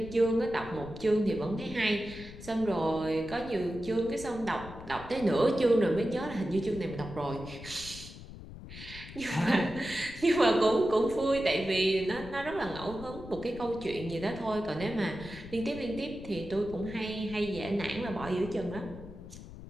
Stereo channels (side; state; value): left; noise; rumble, 14 dB below the sound